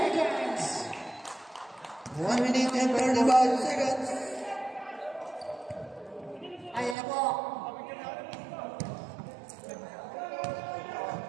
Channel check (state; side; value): drops out; left; at 7.0 s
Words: 1 minute and 35 seconds. Ayan na po.